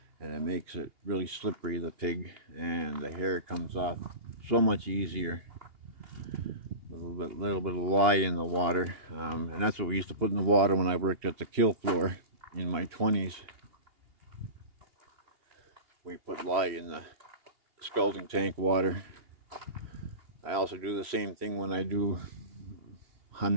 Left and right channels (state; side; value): late; left; 2.8 ms